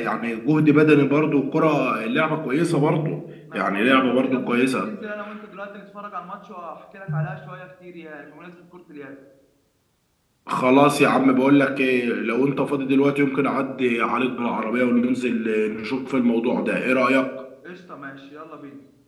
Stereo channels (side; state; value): both; identical; correlation 1.00